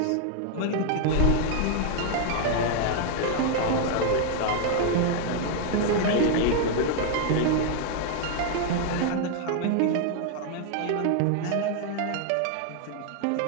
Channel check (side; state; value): both; different; correlation 0.00